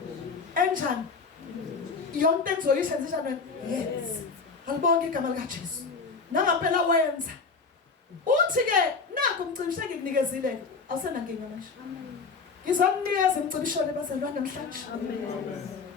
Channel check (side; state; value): right; quieter; 4.7 dB